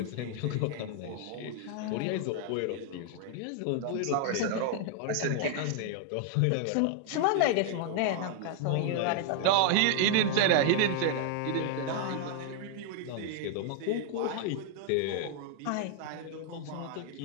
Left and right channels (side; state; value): both; different; correlation 0.00